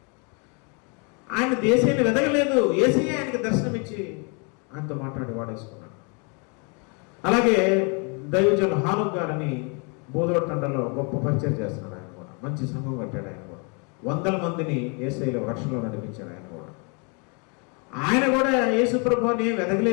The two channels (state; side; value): quieter; right; 34.8 dB